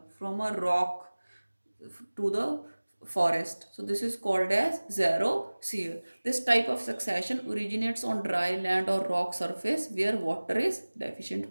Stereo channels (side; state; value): both; inverted; correlation -1.00